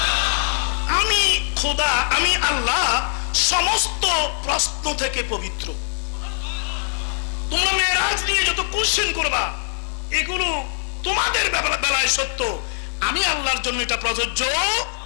আমি খোদা, আমি আল্লাহ সমস্ত প্রশ্ন থেকে পবিত্র। তোমরা মেরাজ নিয়ে যত কোশ্চেন করবা, এগুলো তোমাদের বেলায় সত্য, আমি আল্লাহর জন্য এটা প্রযোজ্য।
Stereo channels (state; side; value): silent; right; 55 dB below the other